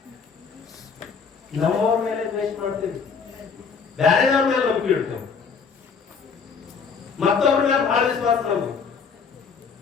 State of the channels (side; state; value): right; quieter; 5.7 dB